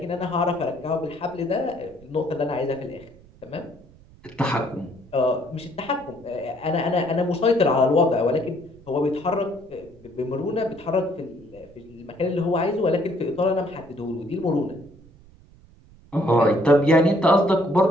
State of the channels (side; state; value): right; noise; rumble, 24 dB below the sound